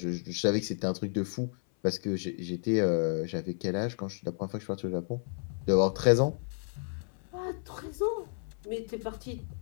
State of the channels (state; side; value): silent; right; 57 dB below the other